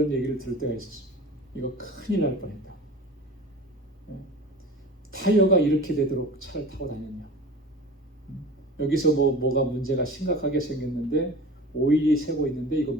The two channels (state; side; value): normal; both; correlation 0.37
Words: 얘기를 들을 때가 있었어요. 이거 큰일 날 뻔했다. 타이어가 이렇게 되도록 차를 타고 다녔냐? 여기서 뭐가 문제가 심각하게 생겼는데 오일이 새고 있는데 이거